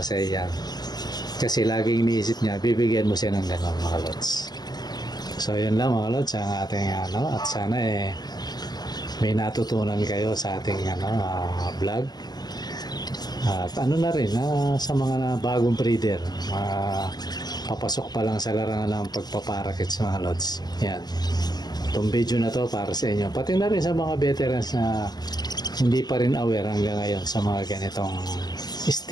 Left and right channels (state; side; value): late; right; 0.20 ms